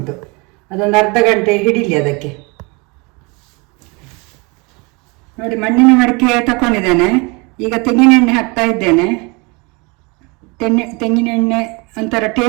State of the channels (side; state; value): left; quieter; 28.5 dB